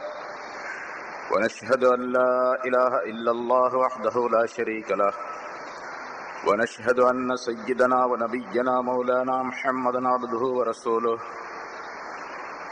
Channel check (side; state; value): both; identical; correlation 1.00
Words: ونشهد أن لا إله إلا الله وحده لا شريك له ونشهد أن سيدنا ونبينا مولانا محمدا عبده ورسوله